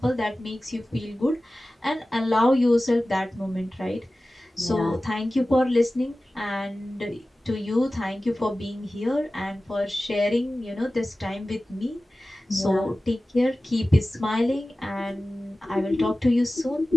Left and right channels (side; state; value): both; normal; correlation 0.96